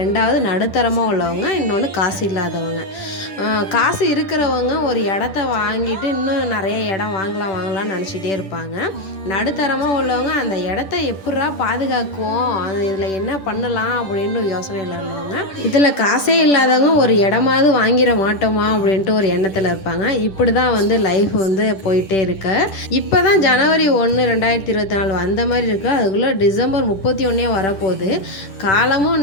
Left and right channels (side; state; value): right; late; 10 ms